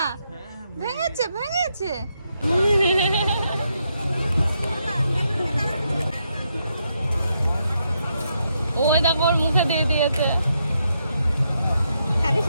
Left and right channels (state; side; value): inverted; both; correlation -0.80